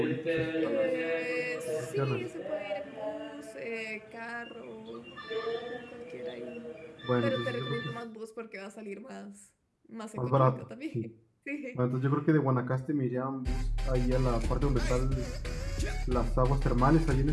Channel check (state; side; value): identical; both; correlation 1.00